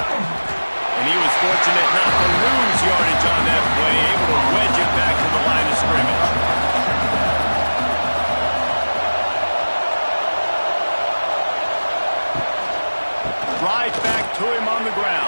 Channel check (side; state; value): both; inverted; correlation -1.00